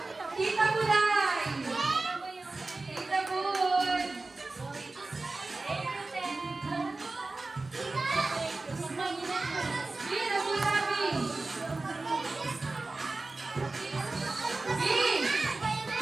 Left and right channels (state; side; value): quieter; left; 3.4 dB